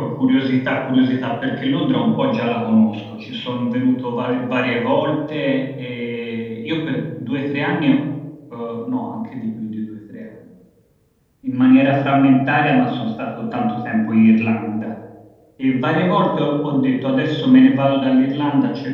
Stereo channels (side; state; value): both; identical; correlation 1.00